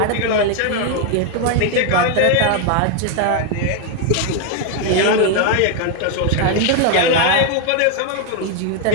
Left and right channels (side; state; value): both; different; correlation 0.01